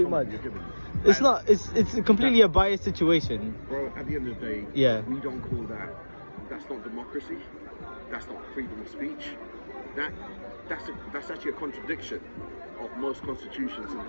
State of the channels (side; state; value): both; inverted; correlation -1.00